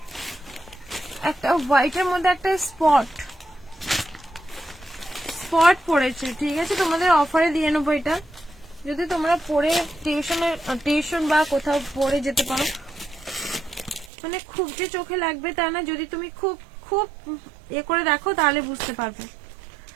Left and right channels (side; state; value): left; drops out; at 14.1 s